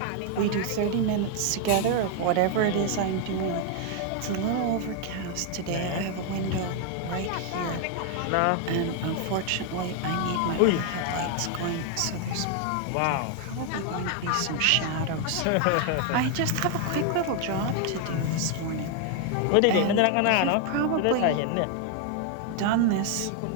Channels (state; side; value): different; both; correlation 0.00